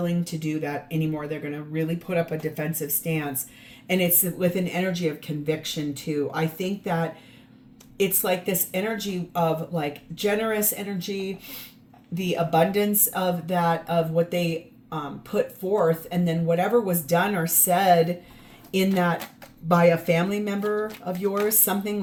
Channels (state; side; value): identical; both; correlation 1.00